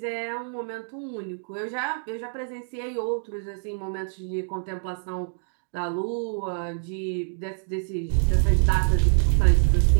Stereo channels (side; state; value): left; silent; digital silence